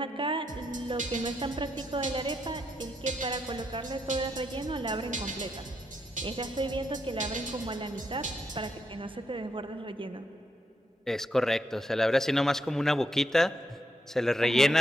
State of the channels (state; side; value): normal; both; correlation 0.80